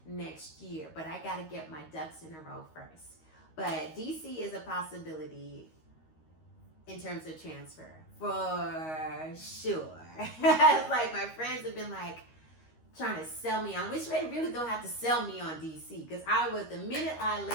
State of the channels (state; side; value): late; right; 13 ms